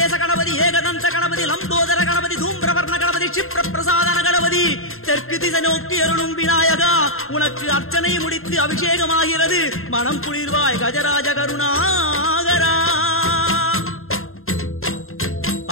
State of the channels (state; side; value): late; right; 0.61 ms